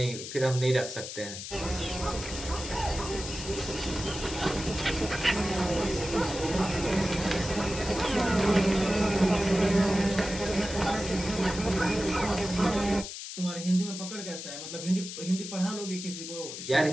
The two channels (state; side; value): noise; left; hiss, 9 dB below the sound